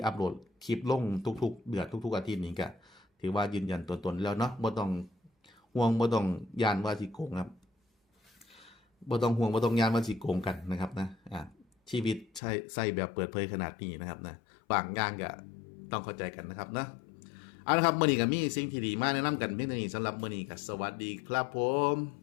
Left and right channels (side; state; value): right; drops out; at 12.4 s